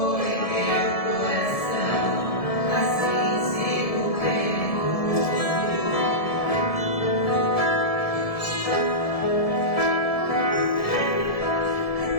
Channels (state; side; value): late; right; 1.7 ms